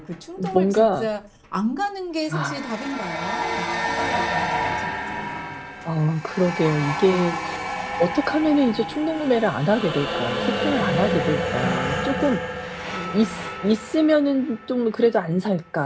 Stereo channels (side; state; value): both; identical; correlation 1.00